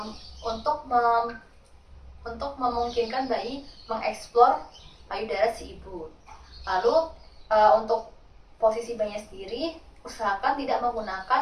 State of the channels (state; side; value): identical; both; correlation 1.00